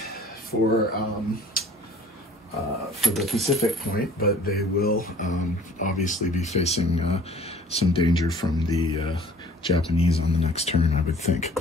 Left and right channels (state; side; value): normal; both; correlation 0.51